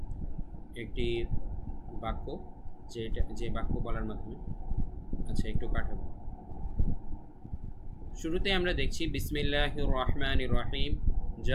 একটি বাক্য, যে বাক্য বলার মাধ্যমে, আচ্ছা একটু কাটাবো। শুরুতে আমরা দেখছি বিসমিল্লাহির রহমানির রহিম,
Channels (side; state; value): both; identical; correlation 1.00